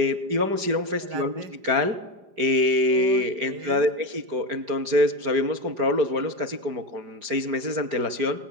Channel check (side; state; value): left; late; 4.9 ms